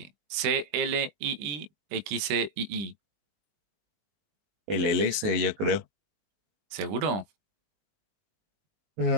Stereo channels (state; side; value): late; left; 20 ms